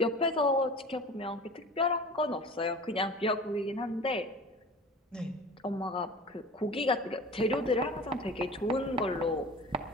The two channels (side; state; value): both; normal; correlation 0.38